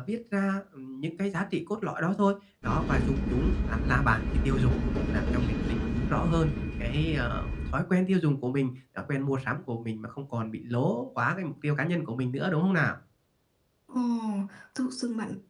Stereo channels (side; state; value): both; identical; correlation 1.00